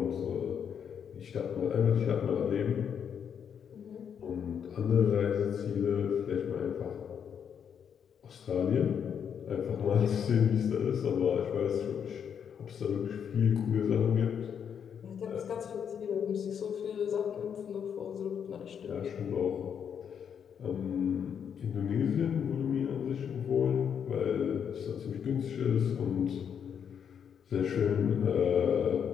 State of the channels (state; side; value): quieter; right; 7.8 dB